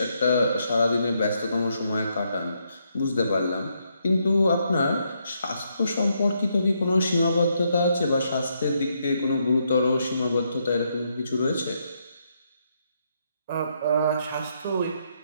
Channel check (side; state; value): both; inverted; correlation -0.77